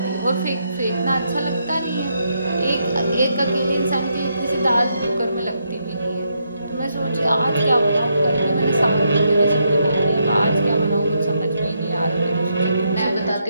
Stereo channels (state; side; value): inverted; both; correlation -0.79